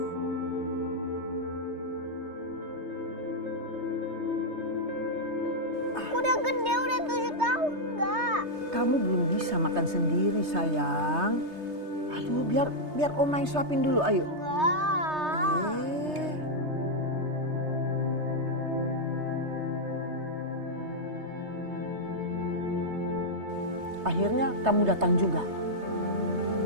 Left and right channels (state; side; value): late; left; 3.3 ms